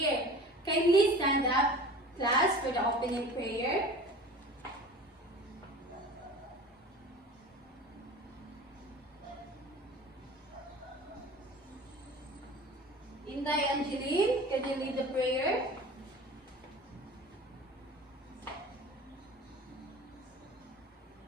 Kindly stand up, class, for the opening prayer. Inday Angeline, can you lead the prayer?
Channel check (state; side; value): normal; both; correlation 0.39